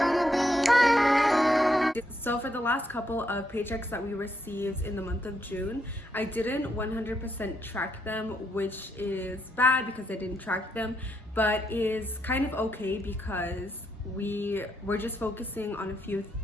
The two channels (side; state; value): both; normal; correlation 0.77